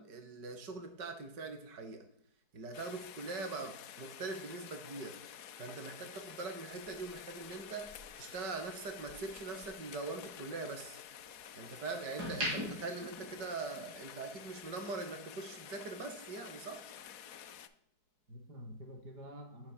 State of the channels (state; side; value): late; left; 4.7 ms